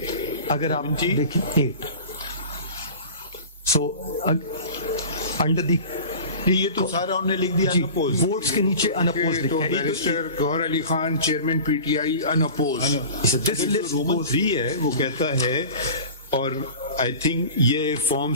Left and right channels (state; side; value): inverted; both; correlation -0.37